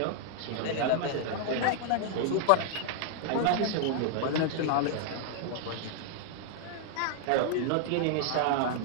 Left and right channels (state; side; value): different; both; correlation -0.01